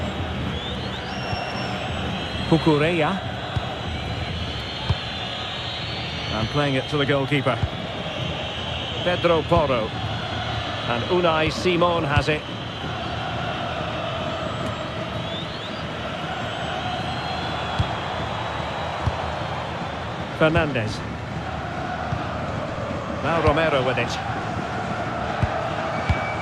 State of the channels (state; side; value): identical; both; correlation 1.00